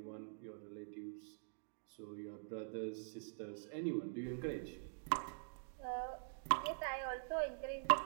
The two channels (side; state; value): left; silent; digital silence